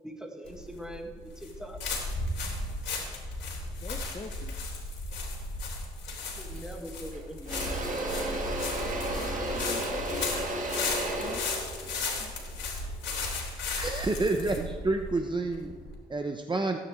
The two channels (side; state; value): both; normal; correlation 0.53